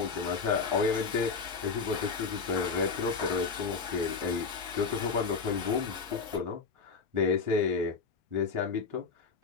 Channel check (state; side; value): quieter; right; 5.1 dB